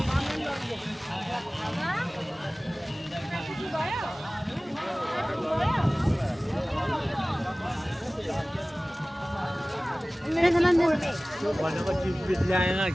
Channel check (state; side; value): normal; both; correlation 0.98